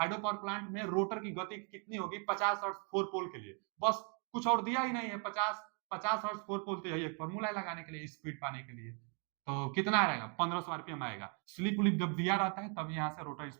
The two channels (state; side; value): quieter; left; 38.8 dB